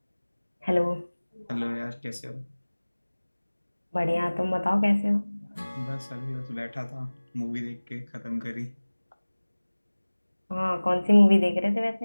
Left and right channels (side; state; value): both; inverted; correlation -1.00